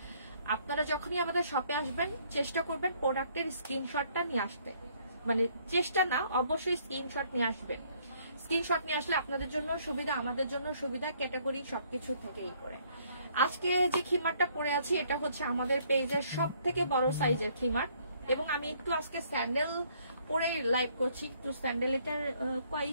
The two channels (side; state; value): both; inverted; correlation -0.64